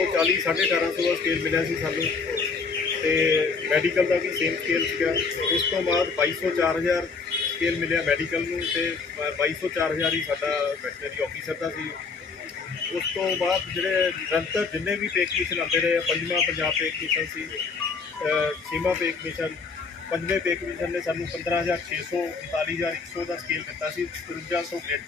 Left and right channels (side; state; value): right; quieter; 4.8 dB